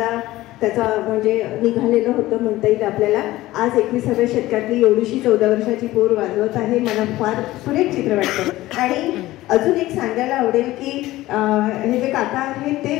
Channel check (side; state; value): right; quieter; 16.9 dB